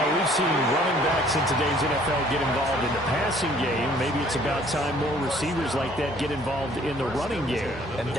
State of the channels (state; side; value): normal; both; correlation 0.58